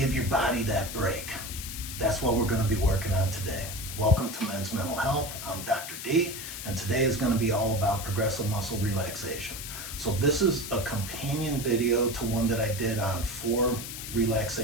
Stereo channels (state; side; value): noise; left; hiss, 8 dB below the sound